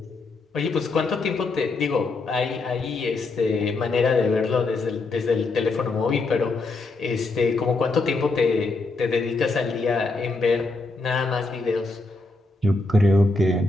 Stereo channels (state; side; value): quieter; right; 3.4 dB